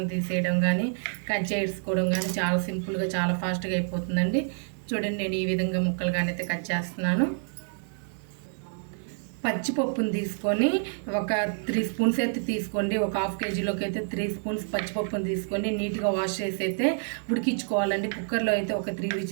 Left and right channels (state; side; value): silent; left; 59 dB below the other